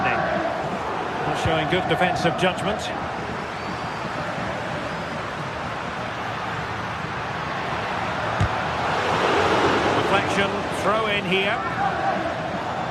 showing good defensive judgment. Deflection, throw in here.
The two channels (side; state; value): both; identical; correlation 1.00